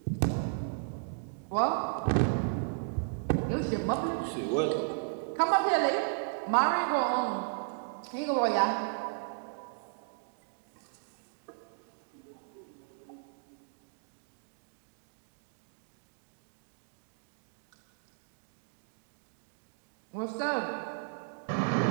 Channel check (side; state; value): left; silent; digital silence